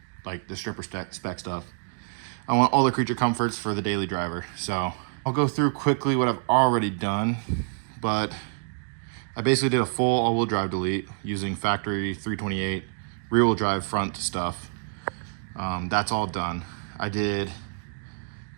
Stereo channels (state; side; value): silent; left; digital silence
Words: like the stripper spec stuff. I want all the creature comforts for the daily driver. So I'll go through quickly what I've already done, but I basically did a full all-wheel drive delete using factory 328 rear-wheel drive front stuff. That's all done. I did